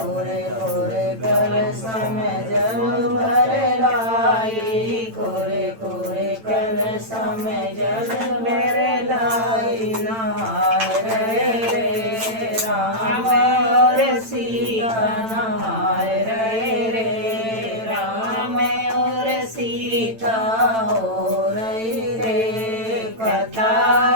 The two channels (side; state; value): left; late; 8.9 ms